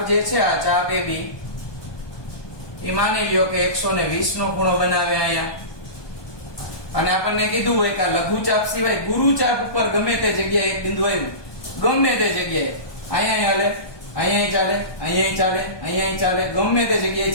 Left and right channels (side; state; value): right; late; 1.2 ms